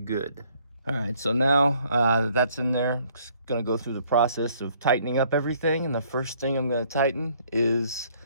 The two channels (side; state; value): both; inverted; correlation -0.63